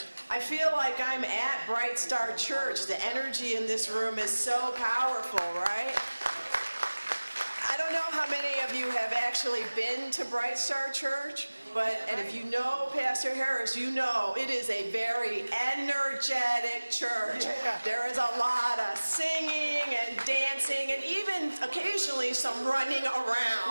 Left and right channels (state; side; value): inverted; both; correlation -1.00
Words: I feel like I'm at Bright Star Church. The energy in this room is so powerful, right? I don't know how many of you have actually been to Bright Star Church, and if you know Pastor Harris, you know it is a very energetic church. There is a lot of singing and dancing and even occasionally some running